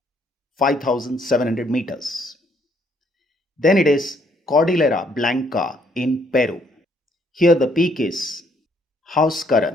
5,700 meters. Then it is Cordillera Blanca in Peru. Here the peak is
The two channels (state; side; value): normal; both; correlation 0.68